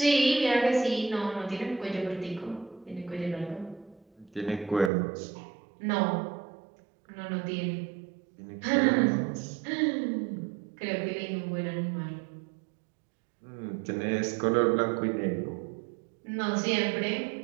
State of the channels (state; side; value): drops out; left; at 4.9 s